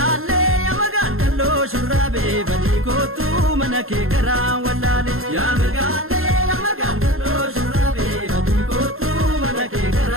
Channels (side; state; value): left; late; 0.61 ms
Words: shurraabee badii kootu mana kee garaa wallaale yaa magaaloo shurraabee badii kootu mana kee